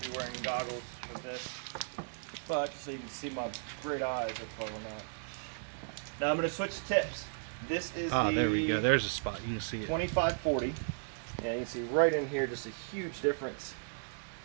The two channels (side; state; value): left; silent; digital silence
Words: wearing goggles with this, but so you can see my great eyes, that's why we're not. Now I'm going to switch tips. This is There we go. There's a spot. You can see it. 2540. Yeah, you can see right in here just a huge difference.